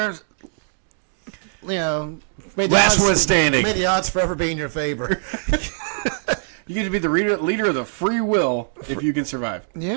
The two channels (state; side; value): silent; left; digital silence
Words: May the Last odds, one standing. May the odds forever be in your favor. You get to be the leader of the free will if you can survive.